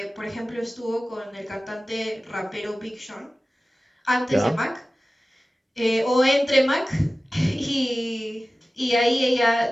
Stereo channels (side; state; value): both; normal; correlation 0.96